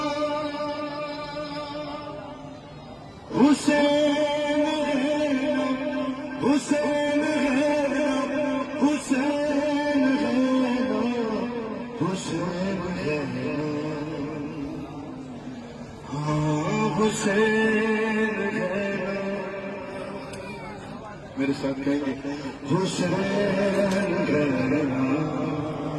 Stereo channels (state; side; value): identical; both; correlation 1.00